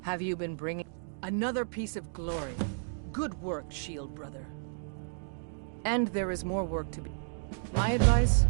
Have you been bringing another piece of glory? Good work, Shield Brother. And there is more work to be. My advice,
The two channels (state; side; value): silent; left; digital silence